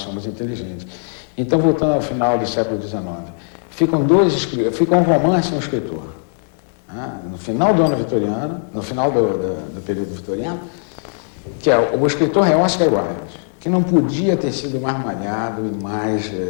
inteligentes. Então, voltando ao final do século XIX, fica um romance e um escritor. No final do ano vitoriano, no final do período vitoriano, que o escritor é Oscar Wilde, que não podia ter sido mais malhado e mais,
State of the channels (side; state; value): right; silent; digital silence